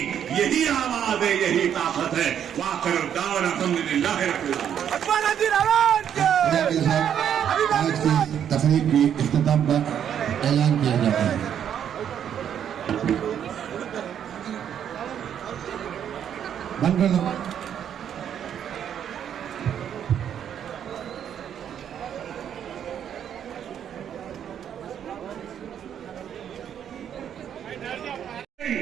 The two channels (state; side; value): quieter; left; 9.1 dB